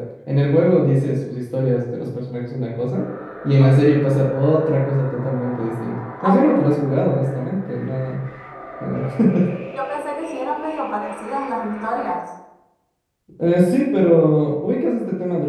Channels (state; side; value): identical; both; correlation 1.00